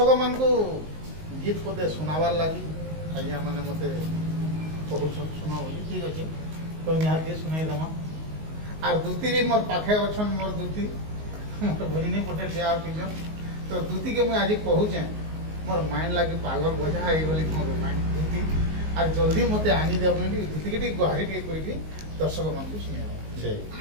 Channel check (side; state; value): left; late; 19 ms